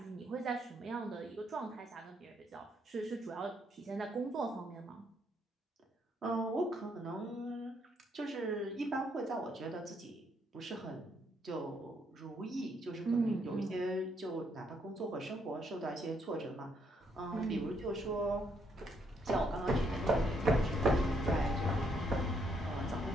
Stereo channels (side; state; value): both; normal; correlation 0.73